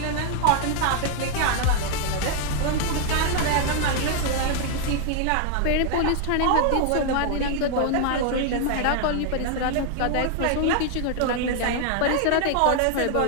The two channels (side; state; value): both; different; correlation 0.00